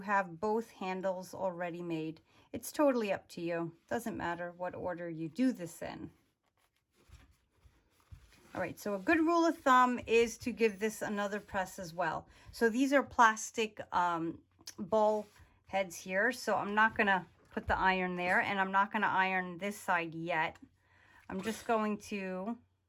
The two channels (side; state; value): both; identical; correlation 1.00